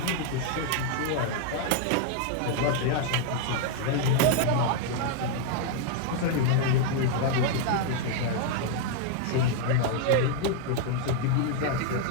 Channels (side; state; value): both; different; correlation 0.00